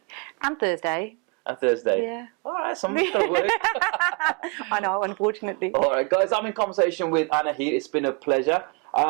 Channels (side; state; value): left; quieter; 31.6 dB